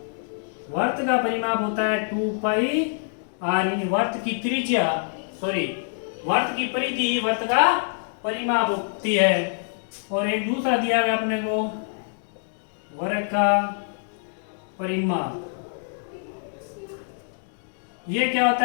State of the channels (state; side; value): silent; right; digital silence